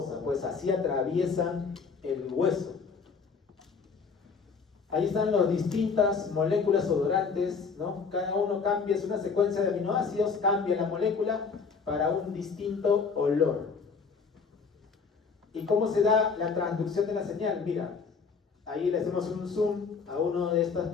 pues así atraviesan el hueso. Ahí están las distintas moléculas odorantes, ¿no? Cada uno cambia, es una secuencia de aminoácidos, cambia la molécula para un distinto olor. ¿Y cómo se da la transducción de la señal? Mira, ahí le hacemos un zoom a una de estas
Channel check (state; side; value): quieter; right; 5.3 dB